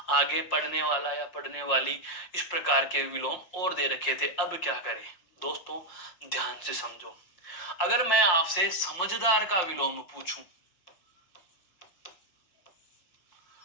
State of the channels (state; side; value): late; right; 5.7 ms